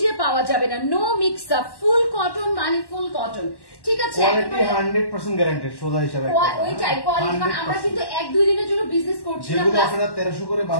পাওয়া যাবে না। No mix up, full cotton মানে ফুল কটন, ঠিক আছে? কোয়ালিটি 100% গ্যারান্টেড সোজা হিসাবে। ওইটাই কোয়ালিটি, মানে আমরা কিন্তু 1-2 দিনের জন্য বিজনেস করছি না, যেগুলো আপনারা 1300 করে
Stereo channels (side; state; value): right; late; 1.1 ms